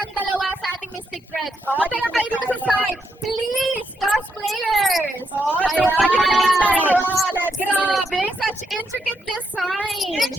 dalawa sa ating Mystic Thread. Punta lang kayo dito sa side. Please, cosplayers! Oo, tayo na yung dalawa. Let's Grabe, such intricate designs.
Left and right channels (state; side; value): normal; both; correlation 0.81